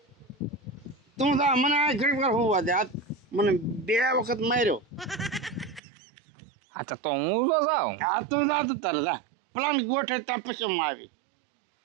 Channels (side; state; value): left; drops out; at 5.8 s